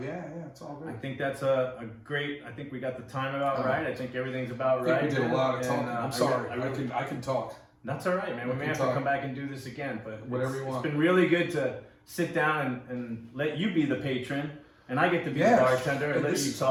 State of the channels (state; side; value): identical; both; correlation 1.00